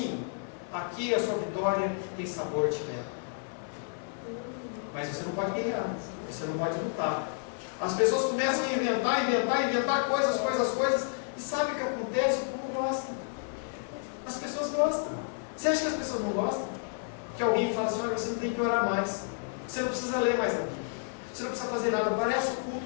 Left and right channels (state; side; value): silent; right; digital silence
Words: Aqui a sua vitória tem sabor de mel. Mas você não pode guerrear, você não pode lutar. As pessoas começam a inventar coisas, e sabe o que acontece? O povo gosta. As pessoas gostam. Você acha que as pessoas não gostam? Que alguém fala assim: olha, você não tem que orar mais, você não precisa ler mais a Bíblia, você não precisa fazer nada. Parece o culto